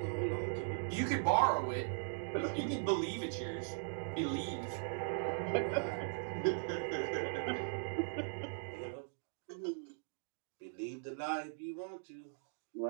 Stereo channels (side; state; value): left; silent; digital silence